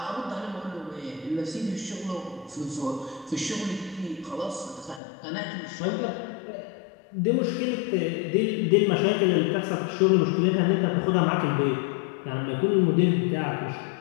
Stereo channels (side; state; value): right; drops out; at 5.0 s